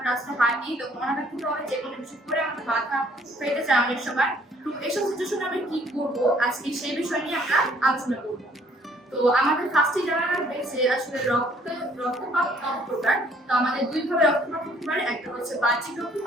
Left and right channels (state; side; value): normal; both; correlation 0.61